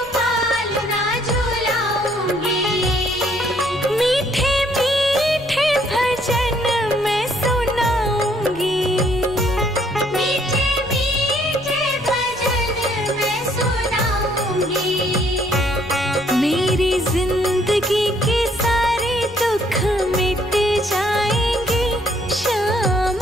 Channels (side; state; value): left; noise; rumble, 20 dB below the sound